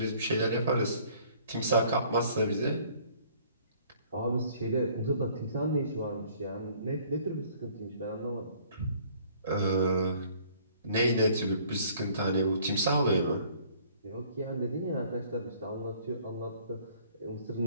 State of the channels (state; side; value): inverted; both; correlation -0.57